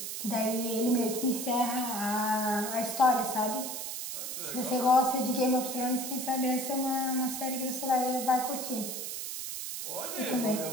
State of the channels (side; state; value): right; noise; hiss, 5 dB below the sound